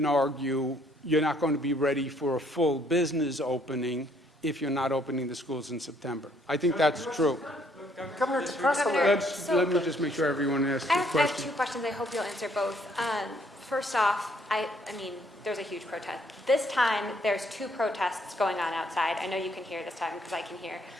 argue you're not going to be ready for a full business opening if you're not opening the schools in September. I think that's true. Governor, to press on Governor, that. Let me just make sure everyone asks I a have question. 2 questions. I hope you'll answer both. First off, I mean, there's a huge protest. This time, there's 2 protests going on outside. I know you can hear this time because I can hear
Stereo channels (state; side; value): normal; both; correlation 0.66